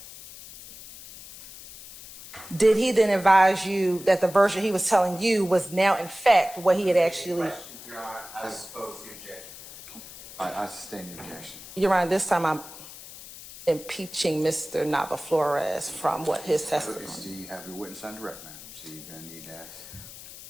Did he then advise you that the version he was telling you was now in fact what he had actually... Your Honor, I oppose the objection. I sustain the objection. Your Honor, this time I'm impeaching Mr. Nava Flores from what his testimony. So you have your witness on direct, ma'am. So you're going to need to ask.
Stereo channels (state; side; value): noise; left; hiss, 15 dB below the sound